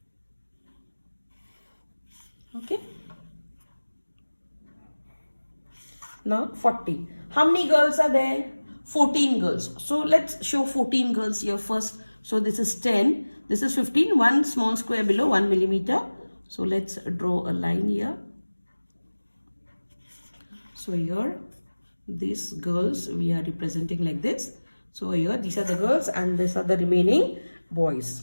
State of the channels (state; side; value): inverted; both; correlation -1.00